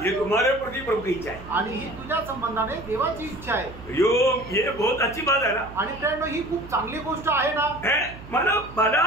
ये तुम्हारे प्रति प्रभु की इच्छा है. आणि ही तुझ्या संबंधाने देवाची इच्छा आहे. ये बहुत अच्छी बात है ना. आणि फ्रेंड ही खूप चांगली गोष्ट आहे ना. मला भला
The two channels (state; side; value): noise; right; hum, 16 dB below the sound